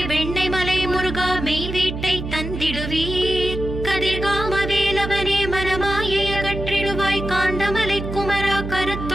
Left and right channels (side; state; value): right; noise; hum, 6 dB below the sound